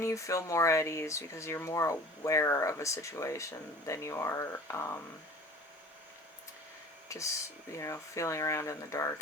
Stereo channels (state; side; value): normal; both; correlation 0.44